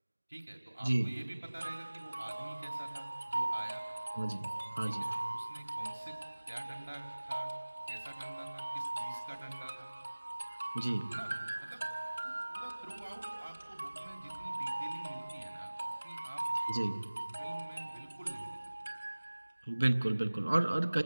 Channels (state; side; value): inverted; both; correlation -1.00